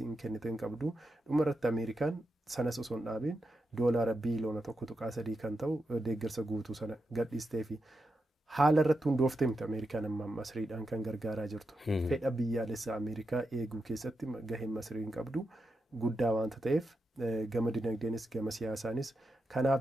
kennite hin qabdu. Dhuma irratti Ameerikaan sanas osoo hin dhaabin doolaara biiliyoona 1.3 kan ta'u deeggarsa guutuu sana gadhiistee fi haala irratti hundooftee miti Ameerikaan amma Masriidhaan kan gargaaraa jirtu. Fedha biyyaalessaa Ameerikaa eeguu keessatti gaheen Masriin qabdu guddaa waanta ta'eef gama dinagdeenis gama siyaasaanis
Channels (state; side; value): normal; both; correlation 0.87